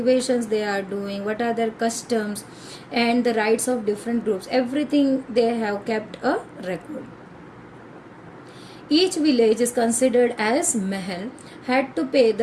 they are doing, what are their customs and the rights of different groups. Everything they have kept a record. Each village is considered as mahal, had to pay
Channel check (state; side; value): identical; both; correlation 1.00